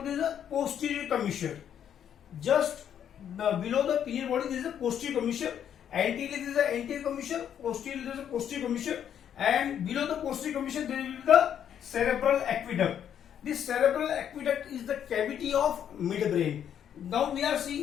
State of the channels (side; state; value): right; quieter; 9.3 dB